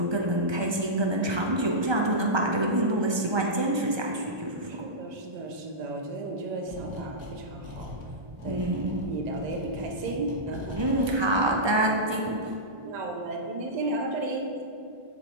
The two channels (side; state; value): left; late; 1.3 ms